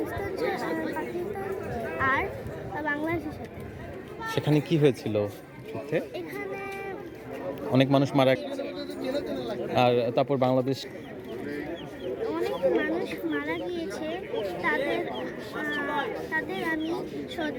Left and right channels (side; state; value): both; identical; correlation 1.00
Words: আর বাংলাদেশের সাথে। সেখানে কি হয়েছিল যুদ্ধে? এখানে অনেক মানুষ মারা, আর তারপর বাংলাদেশ অনেক মানুষ মারা গিয়েছে। তাদের আমি